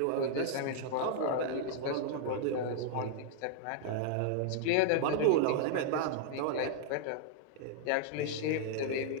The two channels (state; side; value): different; both; correlation -0.01